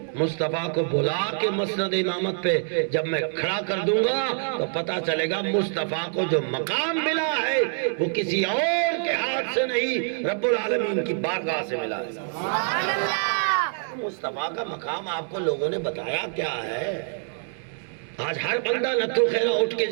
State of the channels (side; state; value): left; silent; 61 dB below the other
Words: مصطفیٰ کو بلا کے مسند امامت پہ جب میں کھڑا کر دوں گا تو پتا چلے گا مصطفیٰ کو جو مقام ملا ہے وہ کسی اور کے ہاتھ سے نہیں, رب العالمین کی بارگاہ سے ملا ہے. سبحان اللہ. مصطفیٰ کا مقام آپ کو لوگوں نے بتایا کیا ہے؟ آج ہر بندہ نتھو خیرہ اٹھ کے